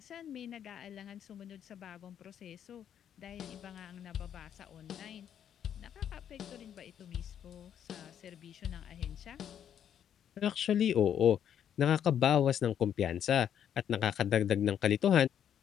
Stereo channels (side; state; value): right; quieter; 9.3 dB